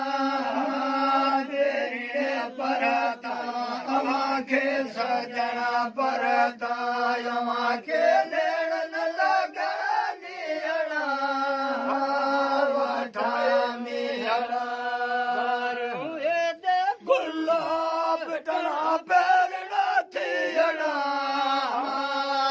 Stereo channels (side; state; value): both; identical; correlation 1.00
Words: तेरे परता अमाखे सजना परता अमाखे नैणन लगा नीहड़ा ठाणीहड़ा गुलाब टना पैरना थियड़ा